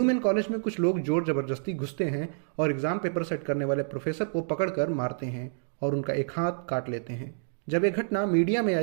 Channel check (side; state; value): left; silent; digital silence